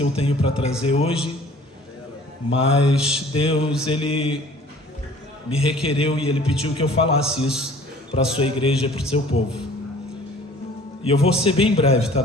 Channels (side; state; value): both; normal; correlation 0.50